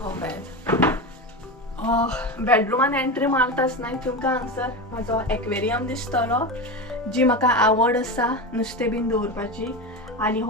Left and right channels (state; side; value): normal; both; correlation 0.21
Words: हो पळय, बेडरुमान एंट्री मारताच न्हय तुमकां हांगसर म्हजो एक्वेरियम दिसतलो, जी म्हाका आवड आसा नुस्तें बीन दवरपाची. आनी